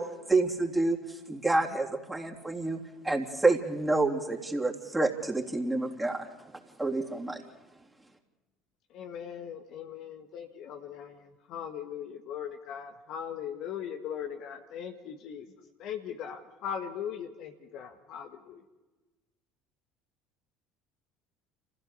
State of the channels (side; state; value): both; normal; correlation 0.81